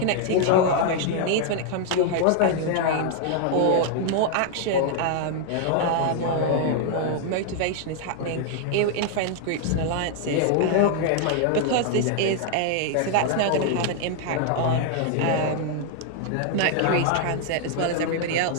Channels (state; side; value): different; both; correlation 0.00